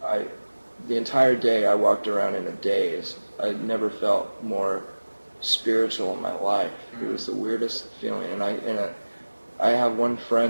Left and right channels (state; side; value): inverted; both; correlation -1.00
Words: the entire day I walked around in a daze. I never felt more spiritual in my life. It was the weirdest feeling, and I have one